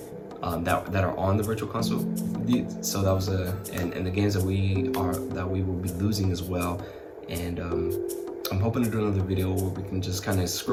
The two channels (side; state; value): both; identical; correlation 1.00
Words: that are on the virtual console. So that was and the games that we will be losing as well. And I'm hoping to do another video where we can just kind of